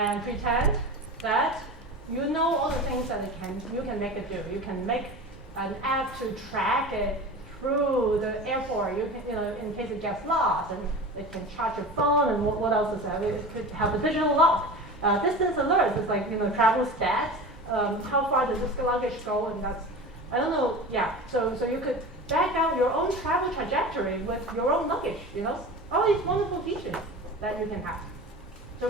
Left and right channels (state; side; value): normal; both; correlation 0.32